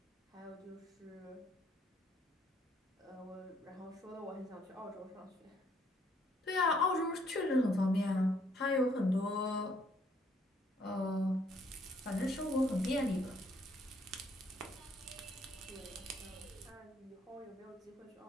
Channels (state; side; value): normal; both; correlation 0.67